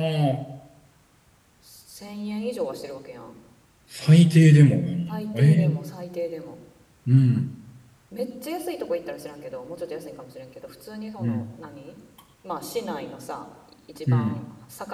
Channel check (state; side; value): identical; both; correlation 1.00